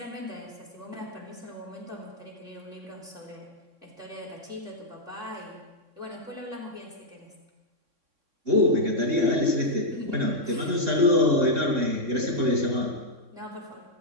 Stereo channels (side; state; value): left; late; 3.6 ms